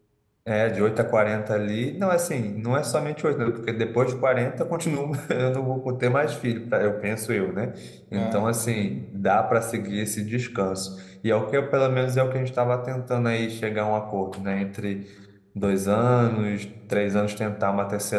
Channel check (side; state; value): both; identical; correlation 1.00